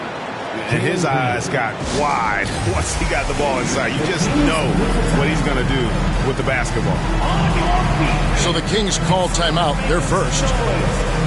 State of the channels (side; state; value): both; identical; correlation 1.00